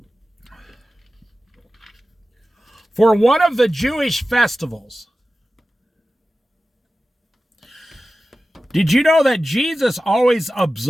for one of the Jewish festivals. Did you know that Jesus always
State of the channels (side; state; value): both; normal; correlation 0.95